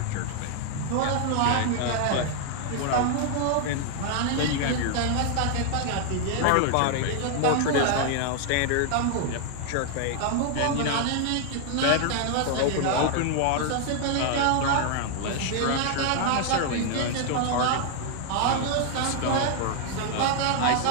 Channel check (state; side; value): different; both; correlation 0.00